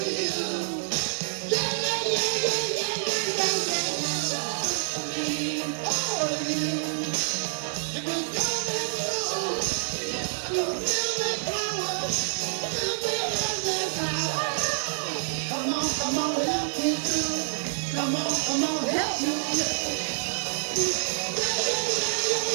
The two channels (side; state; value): left; silent; digital silence